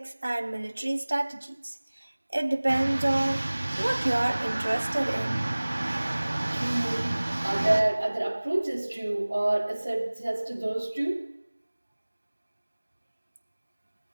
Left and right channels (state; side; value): inverted; both; correlation -1.00